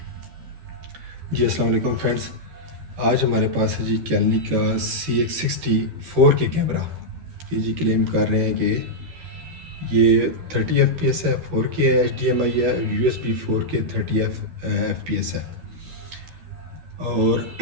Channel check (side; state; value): left; late; 12 ms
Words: अस्सलाम वालेकुम फ्रेंड्स। आज हमारे पास है जी कैलनी का CX60 4K कैमरा। ये जी क्लेम कर रहे हैं कि ये 30 FPS है, 4K है, HDMI है, USB 4K 30 FPS है। और